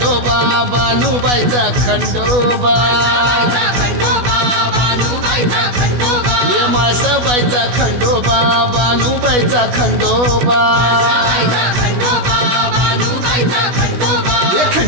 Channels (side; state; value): left; late; 16 ms